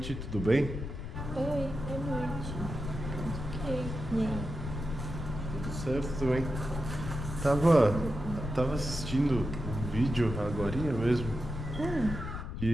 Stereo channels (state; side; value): noise; left; rumble, 6 dB below the sound